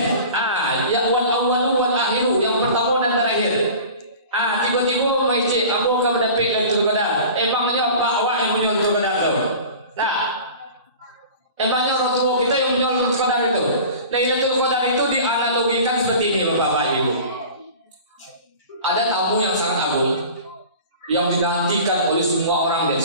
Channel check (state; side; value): inverted; both; correlation -0.39